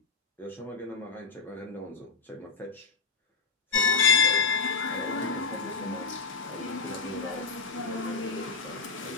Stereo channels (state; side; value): quieter; right; 4.8 dB